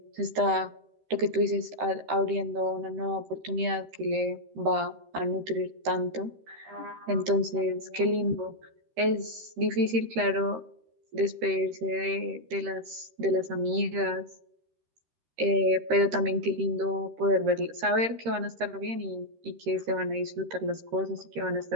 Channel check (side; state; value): left; late; 13 ms